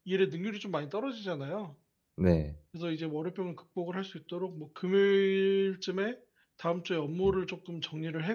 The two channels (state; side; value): identical; both; correlation 1.00